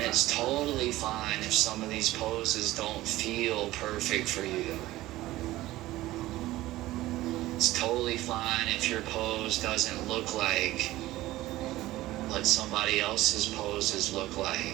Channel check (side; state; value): left; quieter; 16.7 dB